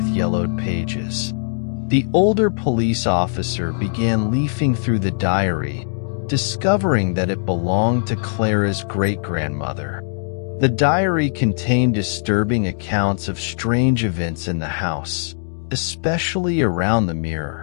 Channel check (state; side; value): silent; right; digital silence